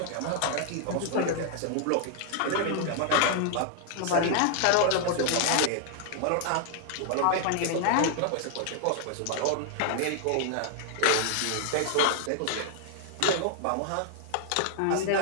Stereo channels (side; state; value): both; different; correlation 0.00